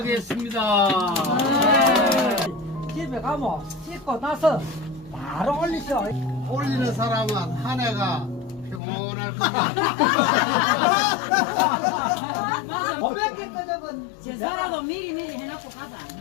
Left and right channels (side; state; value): right; drops out; at 8.8 s